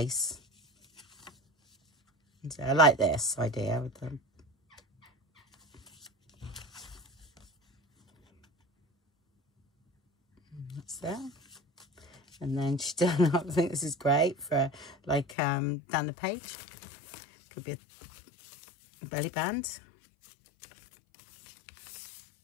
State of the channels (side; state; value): right; drops out; at 15.4 s